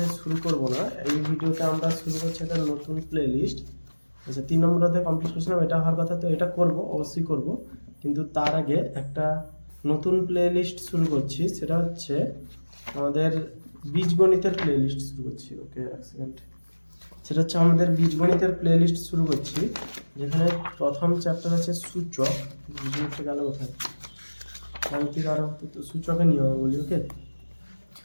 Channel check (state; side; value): inverted; both; correlation -1.00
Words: শুরু করব না, এই ভিডিওতে আমরা শুরু করছি একটা নতুন প্লে লিস্ট। আচ্ছা, 3 নম্বর অধ্যায় কমপ্লিট করেছিলাম, এটা হওয়ার কথা, তো এটা করব, অবশ্যই করব, কিন্তু তার আগে একটা নতুন প্লে লিস্ট শুরু করছি। সেটা হচ্ছে আমাদের বীজগণিতের প্লে লিস্ট শুরু করছি। ওকে, এক সেকেন্ড। সেটা হচ্ছে আমাদের বীজগণিতের প্লে লিস্ট শুরু করছি, যেখানে প্রথম চ্যাপ্টার আছে সূচক। বীজগণিতটা গেল কোথায়, গাণিতিক আরো তো সূচকের নিয়ম বলি। ওকে,